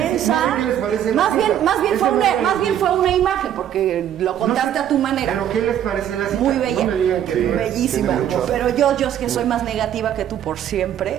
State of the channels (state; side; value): quieter; left; 10.4 dB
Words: ¿qué les parece la más bien, cita? más bien Es fue que una, no- más bien fue una imagen, porque lo contaste a tu manera. ¿Pero qué les parece la cita? Muy bella, No me digan que Sí. no. bellísima. tiene mucho. Pero yo es que soy más negativa que tú por